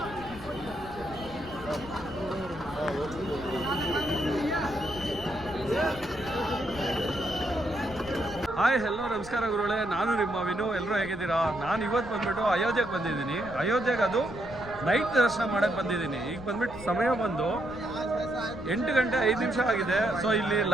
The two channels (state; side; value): noise; left; rumble, 15 dB below the sound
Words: ಹಾಯ್ ಹೆಲೋ ನಮಸ್ಕಾರ ಗುರುಗಳೇ, ನಾನು ನಿಮ್ಮ ವಿನು. ಎಲ್ಲರೂ ಹೇಗಿದ್ದೀರಾ? ನಾನು ಇವತ್ತು ಬಂದ್ಬಿಟ್ಟು ಅಯೋಧ್ಯೆಗೆ ಬಂದಿದ್ದೀನಿ. ಅಯೋಧ್ಯೆಗೆ ಅದು ನೈಟ್ ದರ್ಶನ ಮಾಡೋಕ್ಕೆ ಬಂದಿದ್ದೀನಿ. ಈಗ ಬಂದ್ಬಿಟ್ಟು ಸಮಯ ಬಂದು 8 ಗಂಟೆ 5 ನಿಮಿಷ ಆಗಿದೆ. ಸೊ ಇಲ್ಲಿ